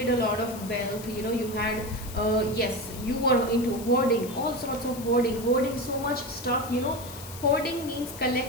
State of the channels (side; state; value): left; noise; hiss, 14 dB below the sound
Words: a lot of wealth, you know, you had yes, you were into hoarding, all sorts of hoarding so much stuff, you know. Hoarding means